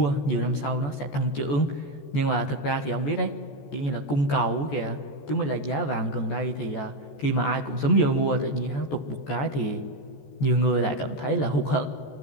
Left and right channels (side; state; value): right; late; 14 ms